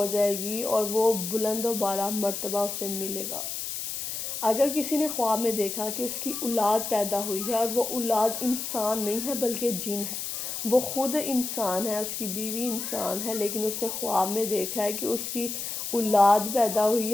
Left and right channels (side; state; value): left; noise; hiss, 5 dB below the sound